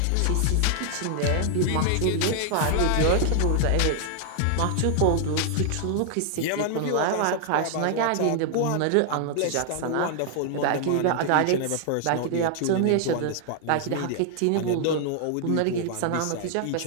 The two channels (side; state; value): both; different; correlation 0.00